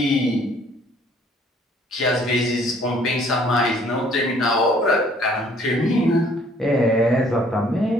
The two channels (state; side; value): normal; both; correlation 0.59